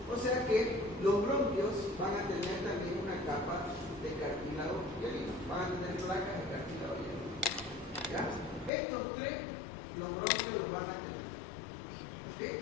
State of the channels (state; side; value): drops out; right; at 8.7 s